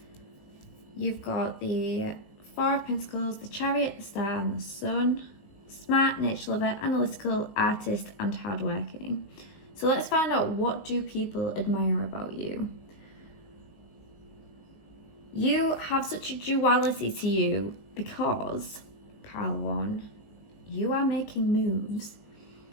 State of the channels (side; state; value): right; late; 19 ms